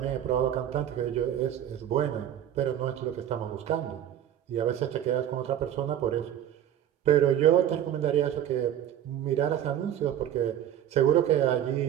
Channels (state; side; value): quieter; left; 10.7 dB